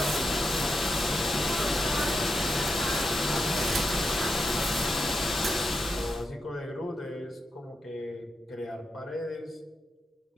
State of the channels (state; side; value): normal; both; correlation 0.86